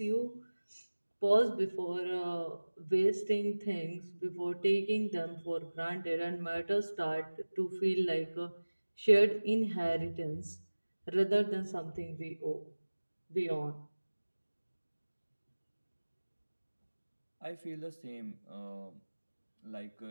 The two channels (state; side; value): inverted; both; correlation -1.00